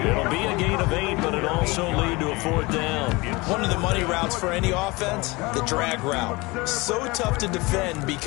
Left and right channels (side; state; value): right; quieter; 23.9 dB